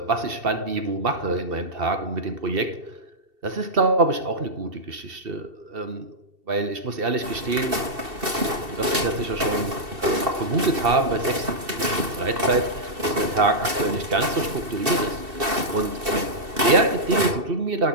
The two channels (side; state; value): left; late; 2.7 ms